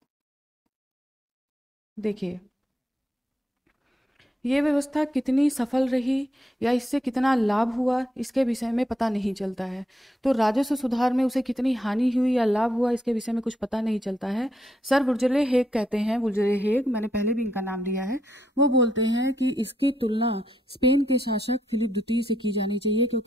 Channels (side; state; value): both; normal; correlation 0.78